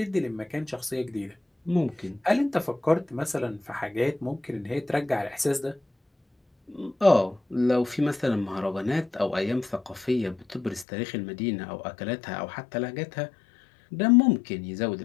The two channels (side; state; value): right; drops out; at 10.9 s